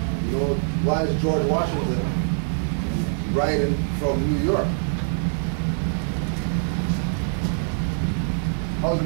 you know, why is George Washington writing from New York? How's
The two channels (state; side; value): silent; left; 59 dB below the other